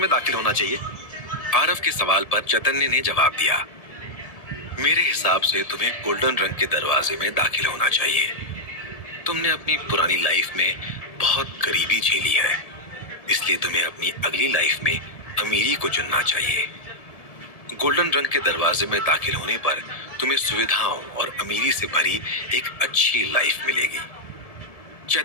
दाखिल होना चाहिए? आरव के सवाल पर चैतन्य ने जवाब दिया, मेरे हिसाब से तुम्हें गोल्डन रंग के दरवाजे में दाखिल होना चाहिए। तुमने अपनी पुरानी लाइफ में बहुत गरीबी झेली है, इसलिए तुम्हें अपनी अगली लाइफ में अमीरी को चुनना चाहिए। गोल्डन रंग के दरवाजे में दाखिल होने पर तुम्हें सुविधाओं और अमीरी से भरी एक अच्छी लाइफ मिलेगी।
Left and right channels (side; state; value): right; late; 1.7 ms